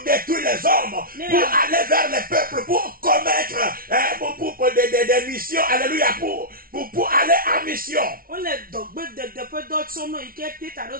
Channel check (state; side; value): late; left; 0.43 ms